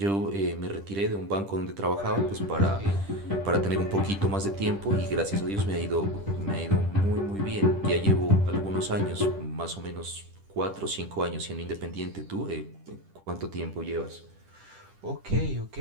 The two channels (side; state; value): left; late; 10 ms